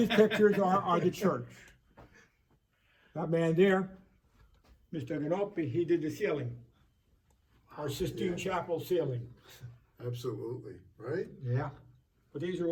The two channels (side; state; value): both; identical; correlation 1.00